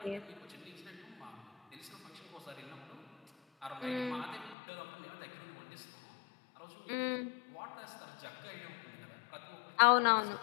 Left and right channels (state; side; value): drops out; right; at 4.5 s